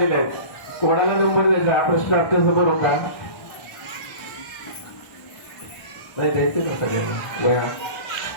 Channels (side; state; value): right; late; 1.1 ms